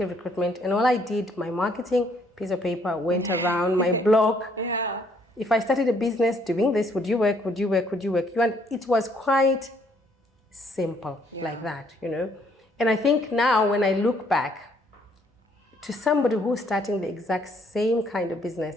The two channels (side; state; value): both; normal; correlation 0.66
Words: recruitment, and all I did, my marketing, piece of paper, went around my blog. Yeah. If I started a business doing this, would you work? Would you work? Would you work? And it was quite simple like that, you know. And I think now when I look back to somebody who's starting the exact same kind of